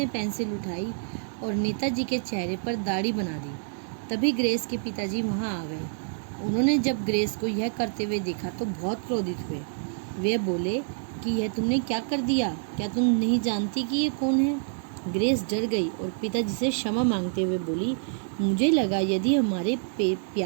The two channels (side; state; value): left; silent; digital silence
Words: पेंसिल उठाई और नेताजी के चेहरे पर दाढ़ी बना दी। तभी ग्रेस के पिताजी वहाँ आ गए। उन्होंने जब ग्रेस को यह करते हुए देखा तो बहुत क्रोधित हुए। वे बोले कि यह तुमने क्या कर दिया? क्या तुम नहीं जानती कि ये कौन है? ग्रेस डर गई और पिताजी से क्षमा मांगते हुए बोली, मुझे लगा यदि हमारे